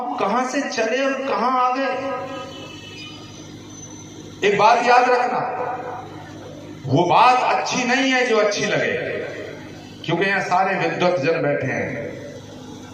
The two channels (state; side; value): identical; both; correlation 1.00